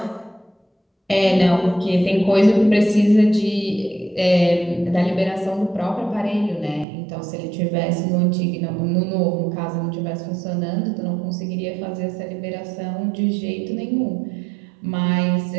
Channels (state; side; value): drops out; left; at 6.9 s